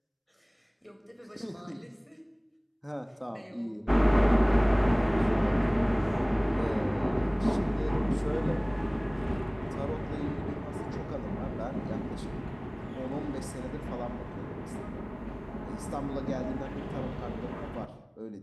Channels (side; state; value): both; identical; correlation 1.00